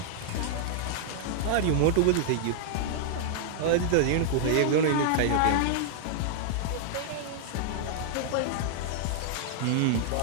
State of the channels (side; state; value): both; different; correlation -0.01